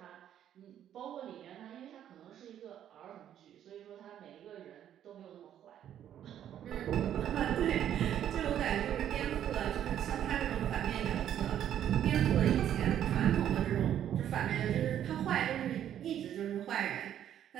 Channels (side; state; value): left; quieter; 10.5 dB